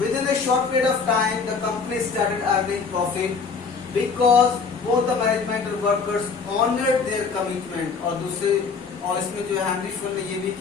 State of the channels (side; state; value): right; quieter; 5.1 dB